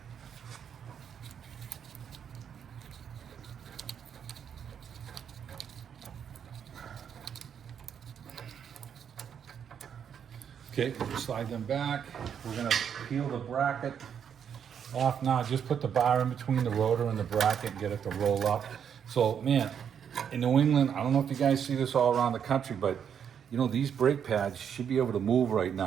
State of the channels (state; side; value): quieter; left; 8.0 dB